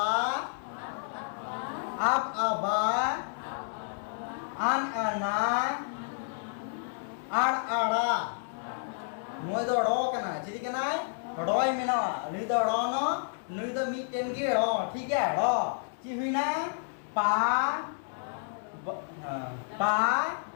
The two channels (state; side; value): silent; right; digital silence